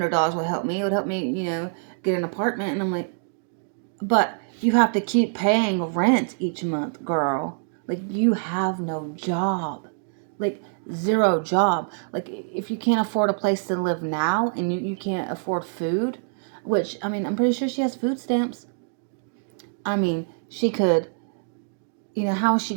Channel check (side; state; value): left; silent; digital silence